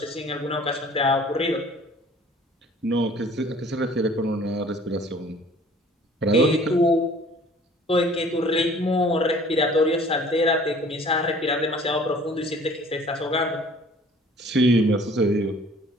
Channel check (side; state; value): both; normal; correlation 0.52